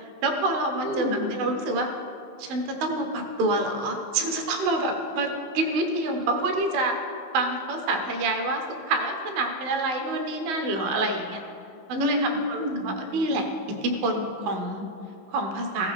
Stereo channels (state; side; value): late; left; 16 ms